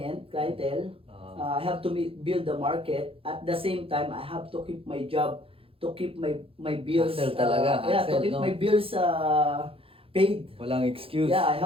I have to build the market. At the same time, I have to keep my job, to keep my bills. Hustle talaga. To keep my bills paid. Walang excuse. Yeah, I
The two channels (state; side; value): late; left; 0.27 ms